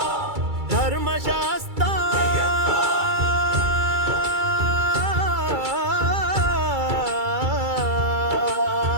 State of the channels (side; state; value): left; late; 2.3 ms